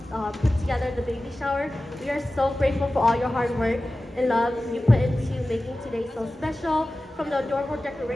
put together the baby shower, we are so grateful for all your hard work and love you put into making today so special. From the adorable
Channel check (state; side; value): normal; both; correlation 0.95